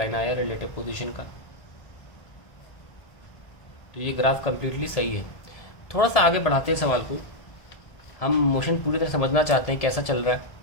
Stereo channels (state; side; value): late; right; 1.7 ms